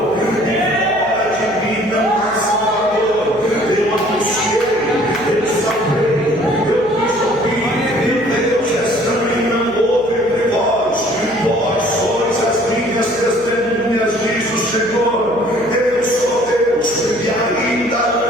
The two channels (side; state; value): right; noise; hum, 20 dB below the sound